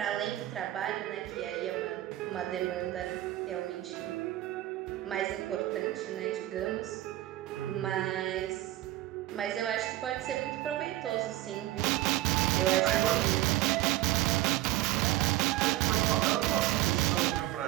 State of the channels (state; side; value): quieter; left; 15.4 dB